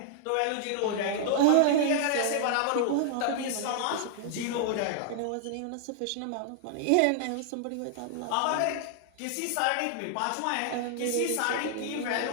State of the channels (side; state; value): both; different; correlation 0.00